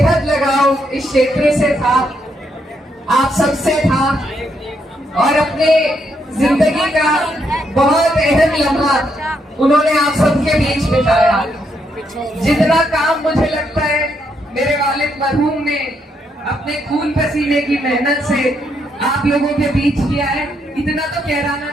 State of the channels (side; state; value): both; normal; correlation 0.77